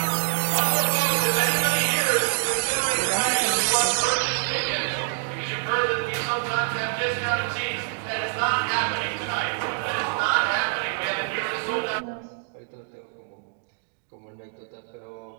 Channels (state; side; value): silent; left; digital silence